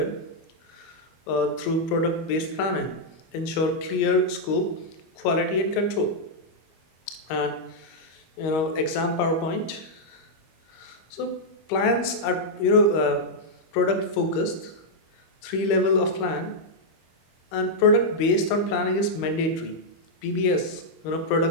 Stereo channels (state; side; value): late; right; 25 ms